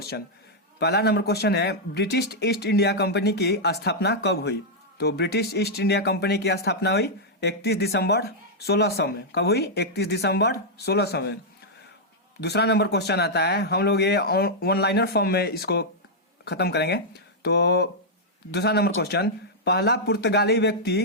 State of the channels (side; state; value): both; normal; correlation -0.06